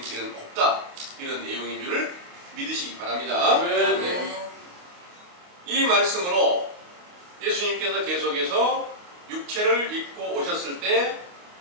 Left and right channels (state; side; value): late; left; 28 ms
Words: 길은 없다. 이런 내용인 줄을 믿으시기 바랍니다. 아멘. 이 말씀으로 예수님께서 계속해서 육체를 입고 오셨을 때